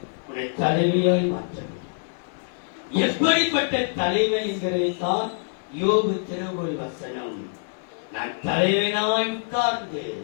உன்னை தலைவியாய் மாற்றப்படுகிறார். எப்படிப்பட்ட தலைவன் என்கிறதைத்தான் யோபு திருவுள் வசனம். நான் தலைவனாய் உட்கார்ந்து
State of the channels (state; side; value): silent; right; digital silence